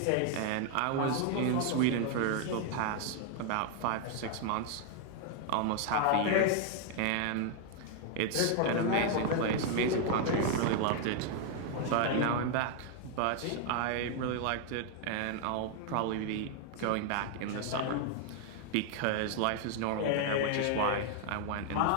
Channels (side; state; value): both; different; correlation 0.00